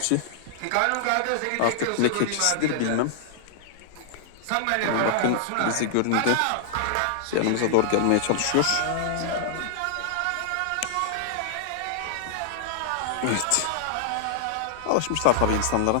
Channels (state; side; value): different; both; correlation -0.01